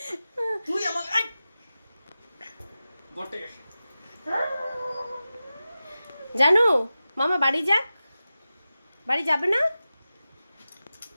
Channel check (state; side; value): inverted; both; correlation -0.94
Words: তুই আমাকে জানু মামা বাড়ি যাক। বাড়ি যাবে না?